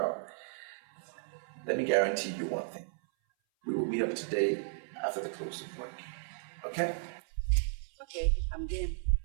Let me guarantee you one thing. We will meet up today after the close of work. Okay? Okay, I'm game.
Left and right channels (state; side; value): silent; left; 55 dB below the other